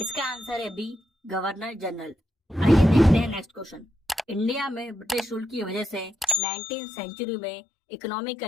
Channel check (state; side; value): drops out; right; at 6.4 s